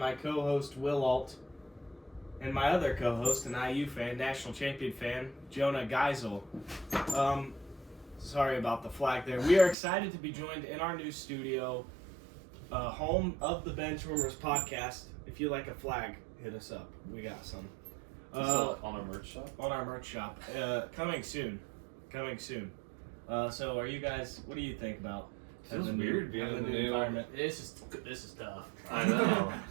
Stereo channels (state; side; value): drops out; left; at 9.8 s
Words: co-host Will Alt and my other co-host, an IU fan, national champion fan, Jonah Geisel. Sorry about the flag there. We are excited to be joined in our new studio, home of the Benchwarmers podcast. If you like a flag, hit us up. We got some. On our merch shop? On our merch shop. Coming soon. So are you guys, what do you think about Feels weird being in the new environment? This is tough. I know.